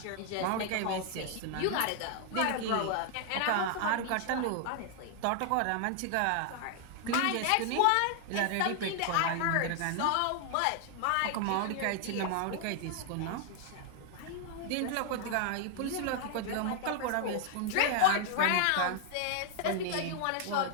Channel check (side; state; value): both; different; correlation 0.00